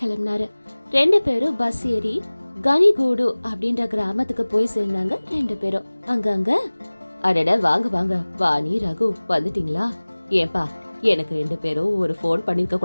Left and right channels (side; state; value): both; inverted; correlation -1.00